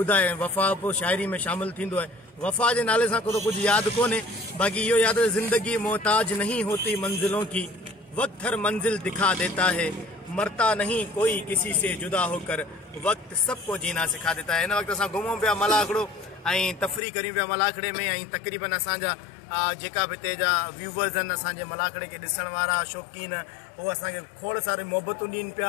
वफ़ा पोइ शाइरी में शामिल थींदो आहे। वफ़ा जे नाले सां को कुझु यादि कोन्हे, बाक़ी इहो यादि ज़िंदगी मोहताज नहीं होती मंजिलों की, वक्त हर मंजिल दिखा देता है, मरता नहीं कोई किसी से जुदा होकर, वक्त सबको जीना सिखा देता है। हिन वक़्तु असां घुमूं पिया मलाखड़ो ऐं तफ़री करियूं पिया मलाखड़े में ऐं तक़रीबन असांजा जेका बि हिते जा व्यूवर्स आहिनि, असांजे मलाखड़े खे ॾिसण वारा शौक़ीन, उहो असांखे खोड़ सारे मोहबतूं ॾियनि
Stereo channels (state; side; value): drops out; right; at 17.0 s